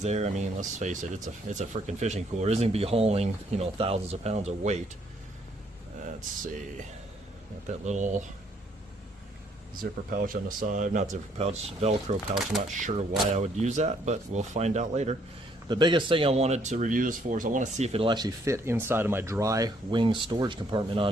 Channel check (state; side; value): normal; both; correlation 0.67